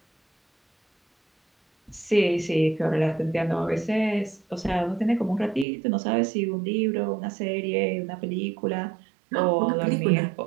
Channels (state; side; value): drops out; left; at 5.7 s